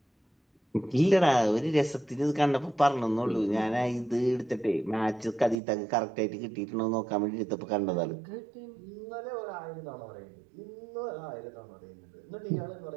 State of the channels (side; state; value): left; drops out; at 5.6 s